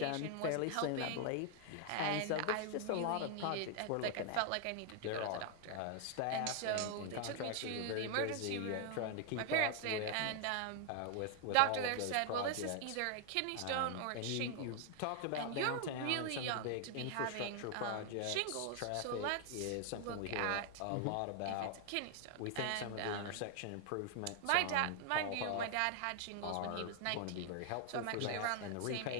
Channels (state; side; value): different; both; correlation 0.00